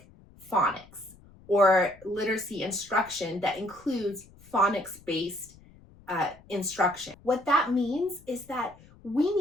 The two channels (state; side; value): noise; left; rumble, 24 dB below the sound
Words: phonics or literacy instruction that includes phonics-based instruction. What that means is that we